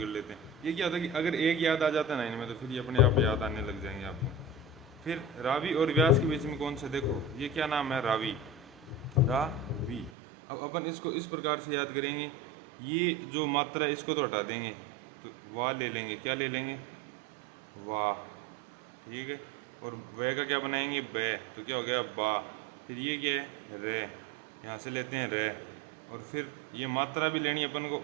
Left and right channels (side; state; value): left; drops out; at 10.1 s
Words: लेते हैं। ये क्या होता है कि अगर एक याद आ जाता है ना इनमें, तो फिर ये अपने आप याद आने लग जाएंगे आपको। फिर रावी और व्यास के बीच में कौन सा? देखो ये क्या नाम है? रावी, रावी। अब अपन इसको इस प्रकार से याद करेंगे, ये जो मात्रा है इसको तो हटा देंगे, तो वाह ले लेंगे। क्या ले लेंगे? वाह, ठीक है। और वे का क्या बनाएंगे? बे, तो क्या हो गया? बा। फिर ये क्या है? रे, यहाँ से लेते हैं रे। और फिर ये मात्रा भी लेनी है अपन को,